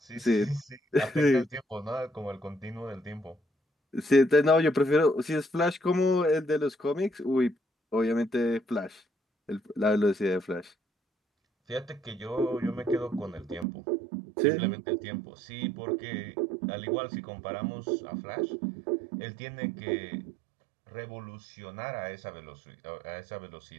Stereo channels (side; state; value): left; drops out; at 13.7 s